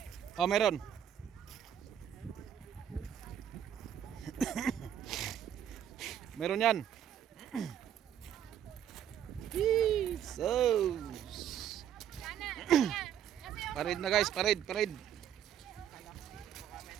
Oh, meron. Meron yan. So. Parid na guys, parid.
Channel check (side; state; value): left; quieter; 9.8 dB